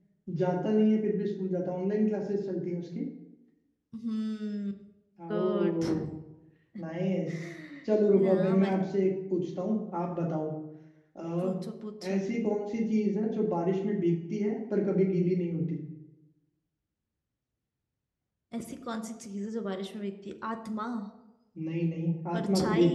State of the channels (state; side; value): identical; both; correlation 1.00